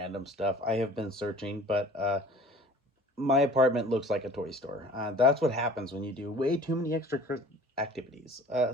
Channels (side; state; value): both; normal; correlation 0.46